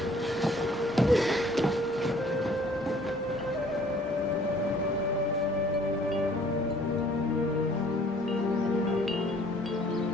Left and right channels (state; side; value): normal; both; correlation 0.56